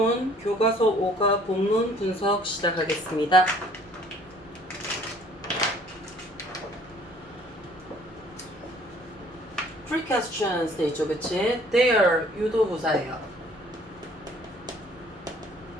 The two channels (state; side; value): normal; both; correlation 0.56